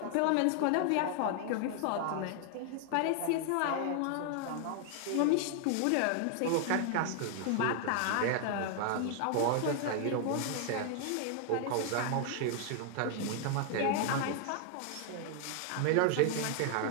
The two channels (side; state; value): both; different; correlation 0.00